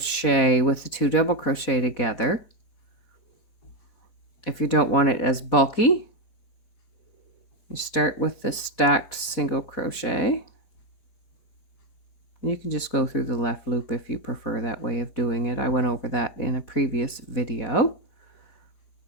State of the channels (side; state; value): right; late; 4.1 ms